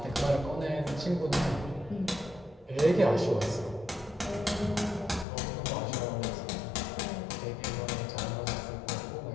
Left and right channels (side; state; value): right; drops out; at 5.2 s